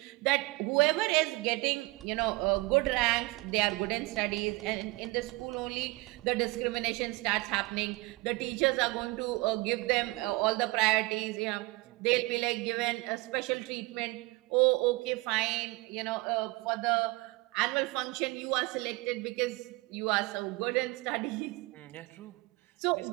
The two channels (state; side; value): quieter; left; 23.1 dB